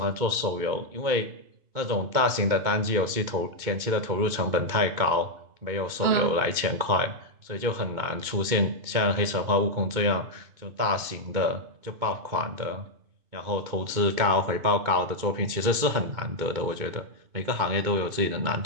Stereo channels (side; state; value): left; late; 2.2 ms